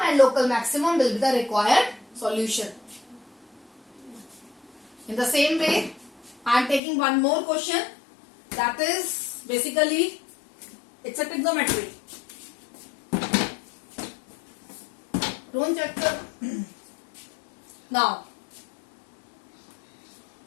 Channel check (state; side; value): drops out; right; at 6.8 s